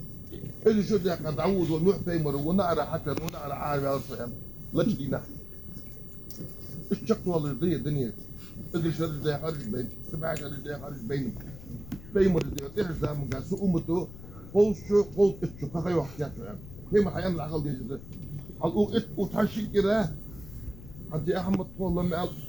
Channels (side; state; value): left; noise; rumble, 15 dB below the sound